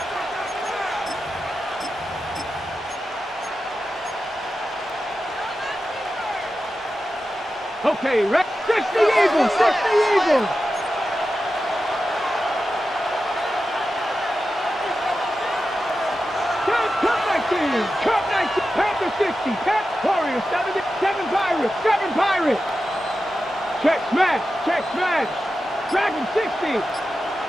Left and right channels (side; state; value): both; normal; correlation 0.92